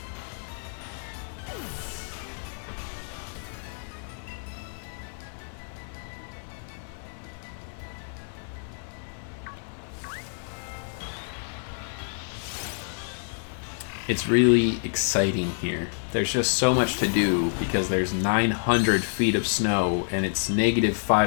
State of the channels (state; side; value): silent; right; digital silence